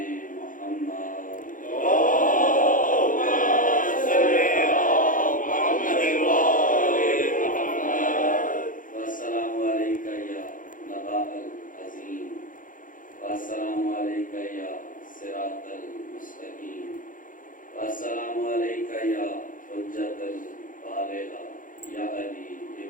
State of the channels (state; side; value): late; right; 0.39 ms